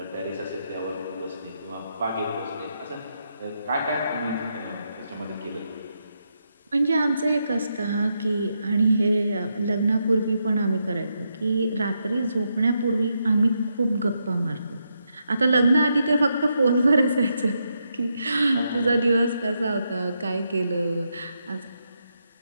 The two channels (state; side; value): inverted; both; correlation -0.82